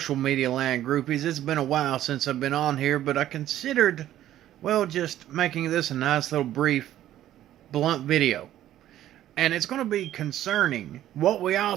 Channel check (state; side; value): quieter; left; 12.7 dB